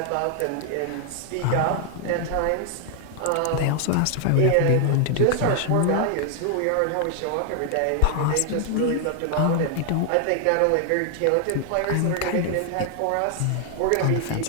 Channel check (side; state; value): both; different; correlation 0.00